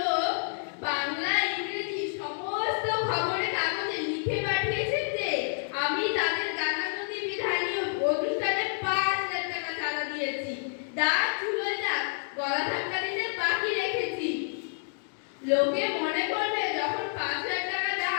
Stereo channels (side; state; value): right; silent; digital silence